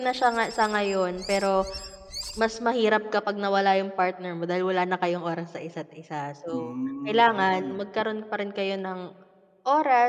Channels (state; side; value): identical; both; correlation 1.00